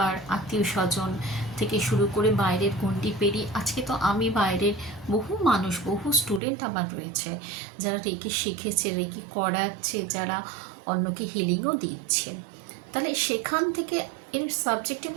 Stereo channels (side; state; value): left; drops out; at 6.4 s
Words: আত্মীয় স্বজন থেকে শুরু করে বাইরের গণ্ডি পেরিয়ে আজকে তো আমি বাইরের বহু মানুষ, বহু স্টুডেন্ট আমার রয়েছে, যারা রেকি শিখেছে, রেকি করাচ্ছে, যারা অন্যকে হিলিংও দিচ্ছে। তাহলে সেখান থেকে এর সাবজেক্টের